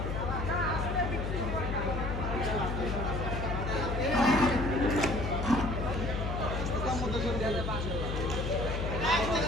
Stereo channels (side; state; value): left; noise; hum, 3 dB below the sound